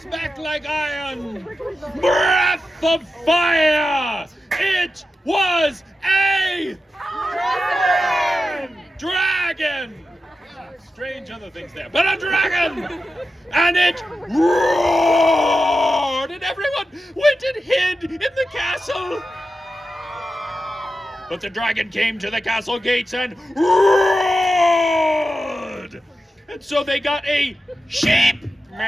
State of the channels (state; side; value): normal; both; correlation 0.91